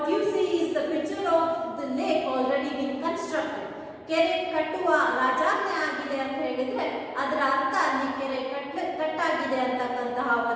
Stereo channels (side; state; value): both; identical; correlation 1.00